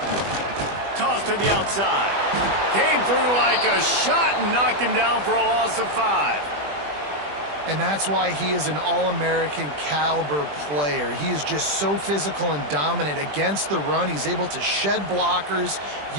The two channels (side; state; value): left; late; 20 ms